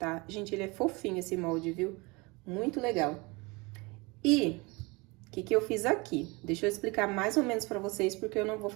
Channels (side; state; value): left; quieter; 26.0 dB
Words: Gente, ele é fofinho esse molde, viu? Muito legal. E o que eu fiz aqui? Deixa eu explicar mais ou menos pra vocês, porque eu não vou